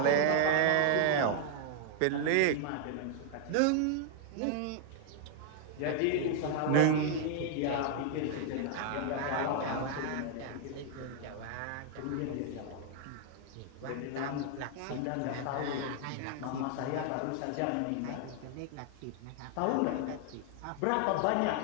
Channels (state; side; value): different; both; correlation 0.00